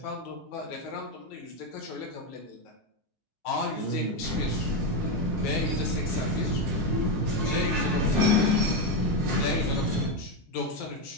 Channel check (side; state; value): both; normal; correlation 0.09